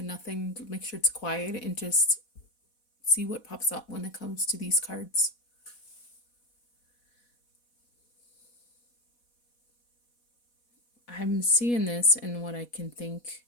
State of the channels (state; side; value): late; right; 4.1 ms